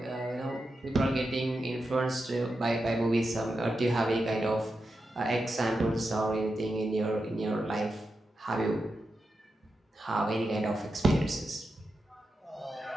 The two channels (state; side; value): normal; both; correlation 0.89